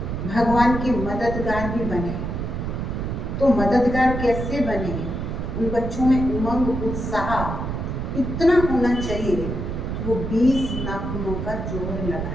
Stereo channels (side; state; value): right; noise; rumble, 4 dB below the sound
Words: भगवान के मददगार भी बने। तो मददगार कैसे बने? उन बच्चों में उमंग, उत्साह इतना होना चाहिए कि वो 20 नाखूनों का जोर